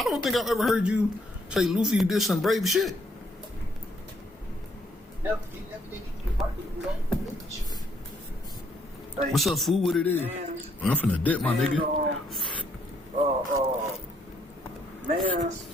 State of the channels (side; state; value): both; normal; correlation 0.70